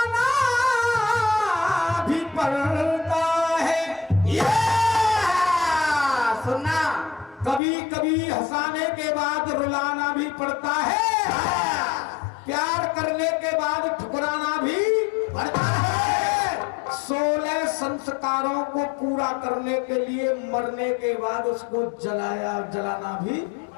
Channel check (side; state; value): right; drops out; at 7.6 s